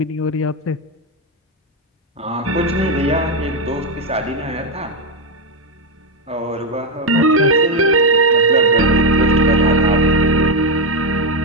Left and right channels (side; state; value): both; normal; correlation 0.06